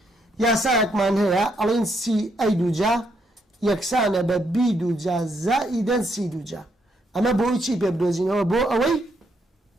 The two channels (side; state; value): both; normal; correlation 0.75